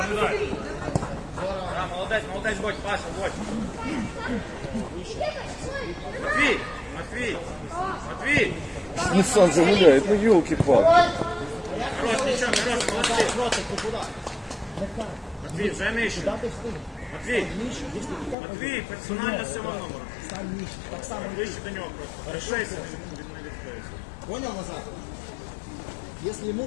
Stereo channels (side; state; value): right; drops out; at 18.4 s